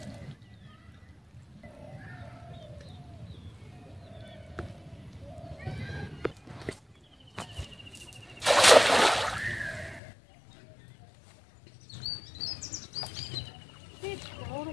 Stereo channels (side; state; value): right; drops out; at 10.0 s